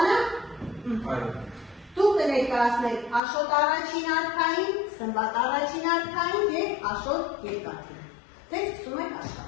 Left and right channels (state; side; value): drops out; right; at 3.2 s